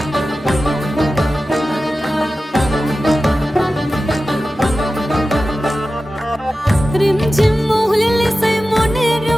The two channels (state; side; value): normal; both; correlation 0.94